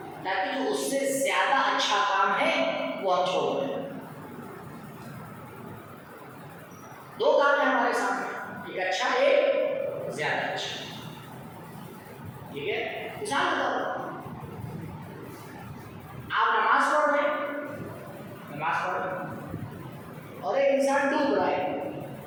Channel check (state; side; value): identical; both; correlation 1.00